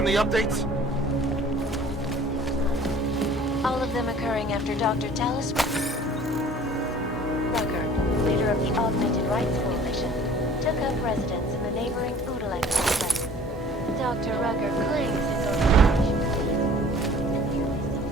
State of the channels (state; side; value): normal; both; correlation 0.49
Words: updates? all of them occurring after Dr. Talis Rucker, leader of the Augmented Rights Coalition, took up residence in the neighboring Udalek complex. Dr. Rucker claims his organization.